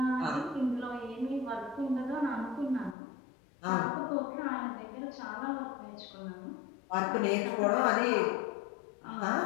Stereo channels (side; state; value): right; drops out; at 3.0 s